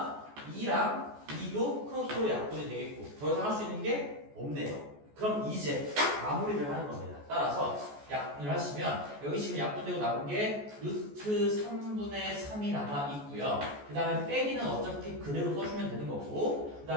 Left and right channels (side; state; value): left; late; 14 ms